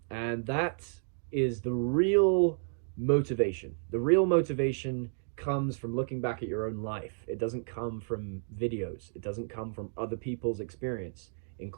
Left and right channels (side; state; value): left; silent; digital silence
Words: And that is the real motivation. The real motivation comes from looking back at your own life. It doesn't come from videos. It doesn't come from other people's experience,